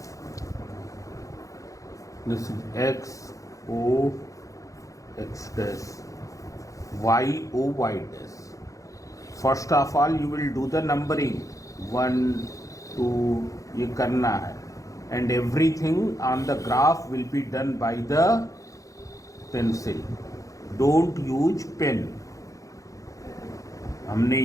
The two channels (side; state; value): right; late; 0.16 ms